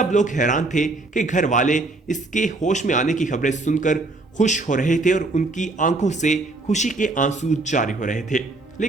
लोग हैरान थे कि घर वाले इसके होश में आने की खबरें सुनकर खुश हो रहे थे और उनकी आंखों से खुशी के आंसू जारी हो रहे थे।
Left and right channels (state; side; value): quieter; left; 3.1 dB